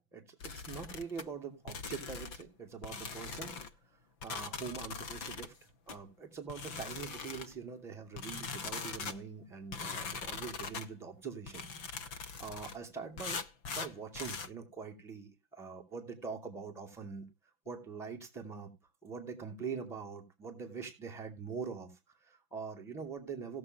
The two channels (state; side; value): late; right; 6.0 ms